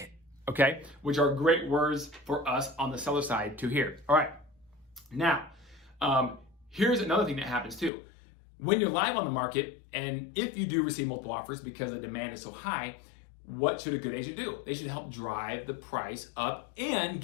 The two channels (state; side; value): drops out; right; at 7.9 s